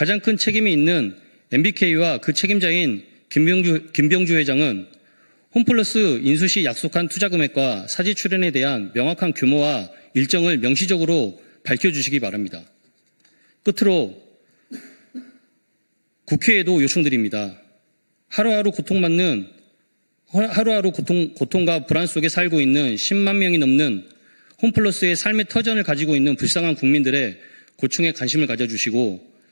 큰 책임이 있는 MBK와 그 책임자인 김병주 회장은 홈플러스 인수 시 약속한 투자 금액과 사지 출연에 대한 명확한 규모와 일정을 명시적으로 밝혀주시기 바랍니다. 끝으로 국회에도 요청드립니다. 하루하루 고통과 불안 속에 살고 있는 10만 명이 넘는 홈플러스의 삶의 터전을 가지고 있는 불쌍한 국민들의 고충에 관심을 가져주시고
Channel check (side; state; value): both; inverted; correlation -1.00